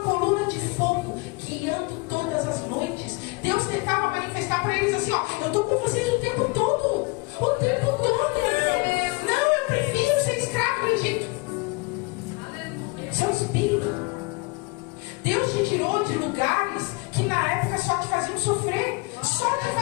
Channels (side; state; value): right; quieter; 27.7 dB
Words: de fogo guiando todas as noites. Deus tentava manifestar para eles assim: ó, eu estou com vocês o tempo todo. O tempo todo. Não, eu prefiro ser escravo do Egito. Seu espírito. Deus te tirou de lugares que na época só te faziam sofrer, só te